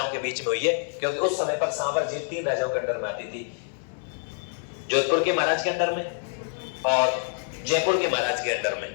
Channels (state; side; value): silent; right; 61 dB below the other